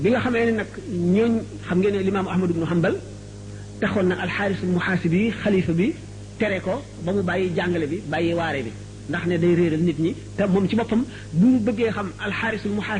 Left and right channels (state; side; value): identical; both; correlation 1.00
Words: bi nga xamee ne nag ñooñ xam ngeen ne limaamu Ahmad ibnu Hanbal taxoon na alxaarisul muhaasibi xalifa bi tere ko ba mu bàyyi jàngale bi bàyyi waare bi ndax ne day réeral nit ñi te moom ci boppam bu mu bëggee xam alxaarisul